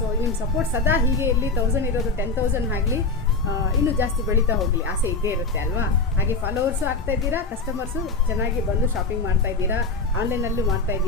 ನಿಮ್ಮ ಸಪೋರ್ಟ್ ಸದಾ ಹೀಗೆ ಇರಲಿ. 1000 ಇರೋದು 10,000 ಆಗಲಿ, ಇನ್ನೂ ಜಾಸ್ತಿ ಬೆಳೀತಾ ಹೋಗಲಿ, ಆಸೆ ಇದ್ದೇ ಇರುತ್ತೆ ಅಲ್ವಾ. ಹಾಗೆ ಫಾಲೋವರ್ಸು ಆಗ್ತಾ ಇದ್ದೀರಾ, ಕಸ್ಟಮರ್ಸು ಚೆನ್ನಾಗಿ ಬಂದು ಶಾಪಿಂಗ್ ಮಾಡ್ತಾ ಇದ್ದೀರಾ, ಆನ್ಲೈನಲ್ಲೂ ಮಾಡ್ತಾ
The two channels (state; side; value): quieter; right; 3.7 dB